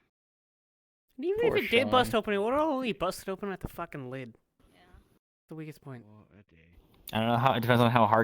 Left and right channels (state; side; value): identical; both; correlation 1.00